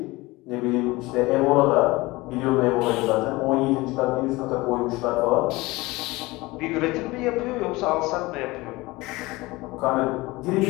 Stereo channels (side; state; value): right; quieter; 21.4 dB